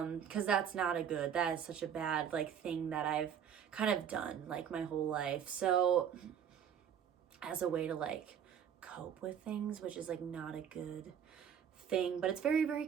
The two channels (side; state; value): left; quieter; 8.5 dB